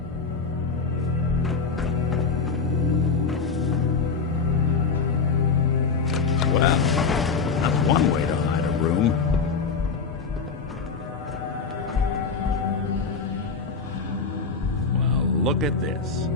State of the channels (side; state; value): right; quieter; 4.9 dB